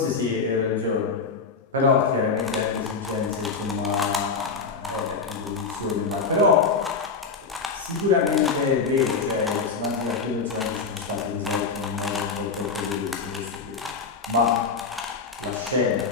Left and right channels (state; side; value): quieter; right; 4.8 dB